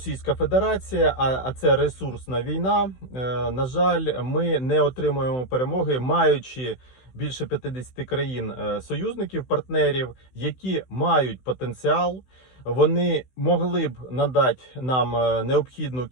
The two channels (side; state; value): right; late; 16 ms